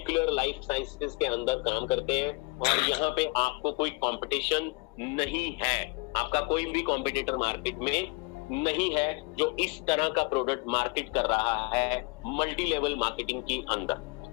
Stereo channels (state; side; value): quieter; right; 27.8 dB